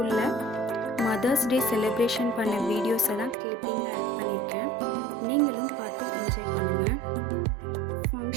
மதர்ஸ் டே செலிப்ரேஷன் பண்ண வீடியோஸை தான் கிளிப்பிங்காக ஆட் பண்ணியிருக்கேன். நீங்களும் பார்த்து என்ஜாய் பண்ணுங்கள்.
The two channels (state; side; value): drops out; left; at 3.4 s